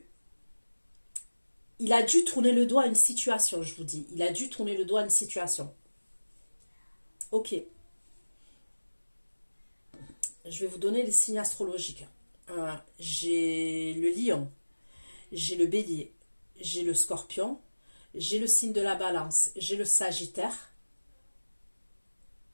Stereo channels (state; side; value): inverted; both; correlation -1.00